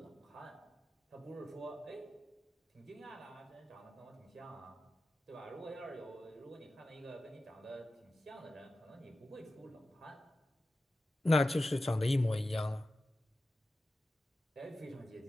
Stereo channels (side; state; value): both; normal; correlation 0.93